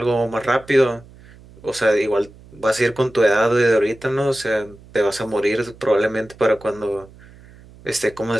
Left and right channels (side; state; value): right; noise; hum, 23 dB below the sound